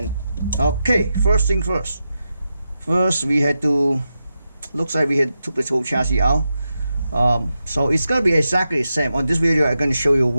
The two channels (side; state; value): both; inverted; correlation -0.89